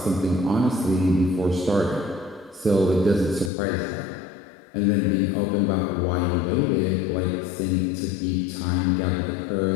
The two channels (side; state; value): right; drops out; at 3.5 s